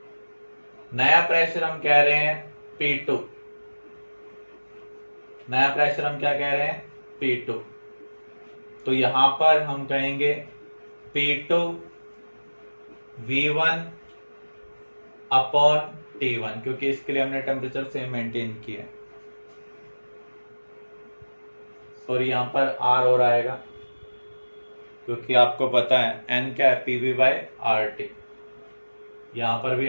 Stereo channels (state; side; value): inverted; both; correlation -1.00